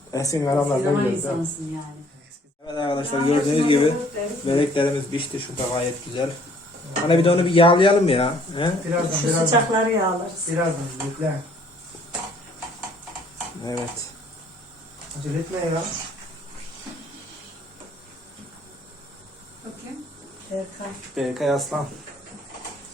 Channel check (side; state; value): both; normal; correlation 0.59